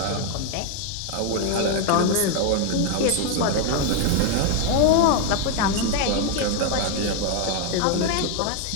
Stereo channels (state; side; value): different; both; correlation 0.01